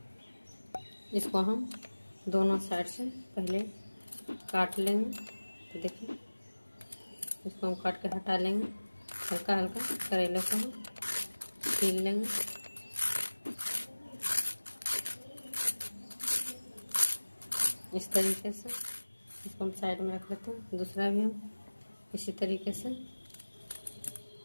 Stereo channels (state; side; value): inverted; both; correlation -1.00